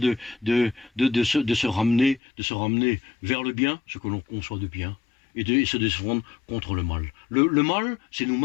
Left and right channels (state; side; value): drops out; right; at 2.2 s